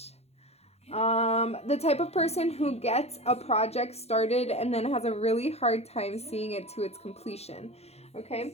The type of person who gets a project started and then has a really hard time seeing it to its completion.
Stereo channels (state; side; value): late; right; 0.31 ms